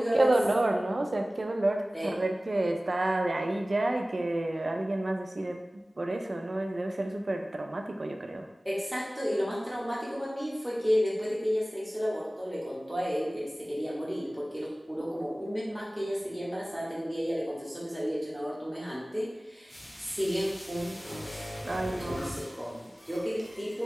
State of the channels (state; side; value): normal; both; correlation 0.98